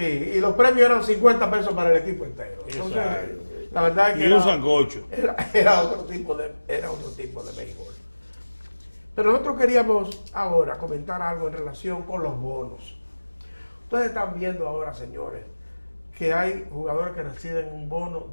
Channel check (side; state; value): both; inverted; correlation -1.00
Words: los premios eran 50 pesos para el equipo entero. Entonces, Exacto. la verdad es que Y un sancocho. era otro tipo de béisbol. Pero nosotros queríamos ahora comentar algo en relación con los bonos. Ustedes están viendo ahora, señores, que hay jugadores que reciben un bono